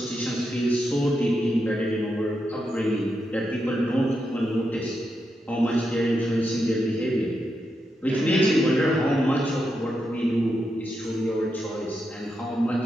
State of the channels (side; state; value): both; normal; correlation 0.85